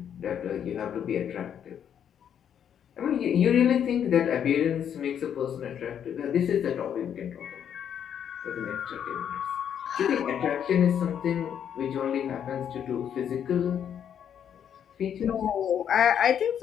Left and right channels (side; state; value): right; quieter; 8.8 dB